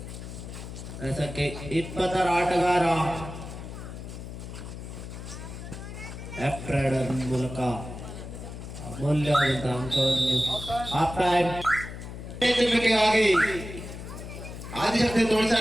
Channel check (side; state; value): left; noise; hum, 10 dB below the sound